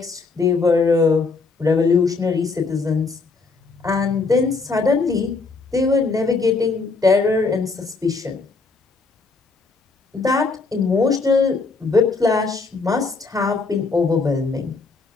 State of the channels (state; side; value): quieter; right; 4.1 dB